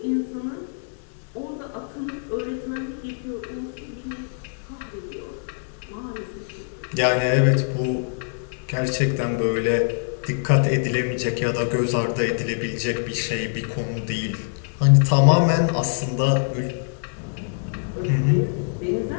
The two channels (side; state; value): right; silent; digital silence